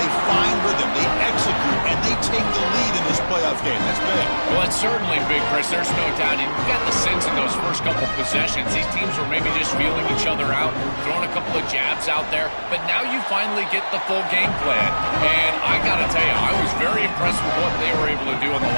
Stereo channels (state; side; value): inverted; both; correlation -1.00